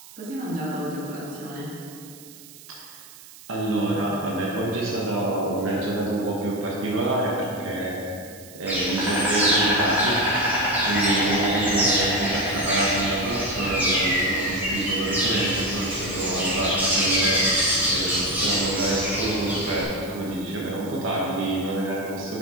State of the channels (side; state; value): right; noise; hiss, 20 dB below the sound